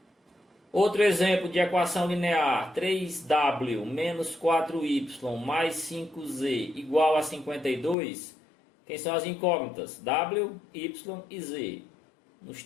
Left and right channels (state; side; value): drops out; right; at 8.0 s